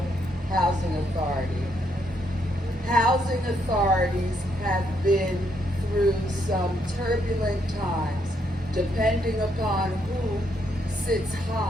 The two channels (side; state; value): both; normal; correlation 0.75